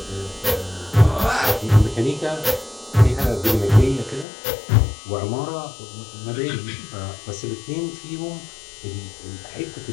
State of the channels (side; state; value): right; drops out; at 4.2 s